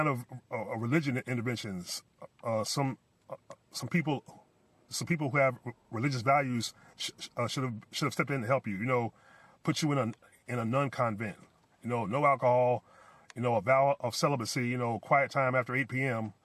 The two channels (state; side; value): identical; both; correlation 1.00